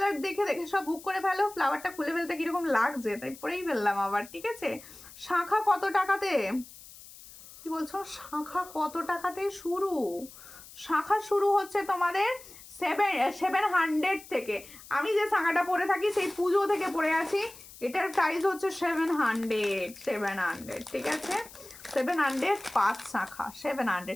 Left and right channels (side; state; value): left; noise; hiss, 18 dB below the sound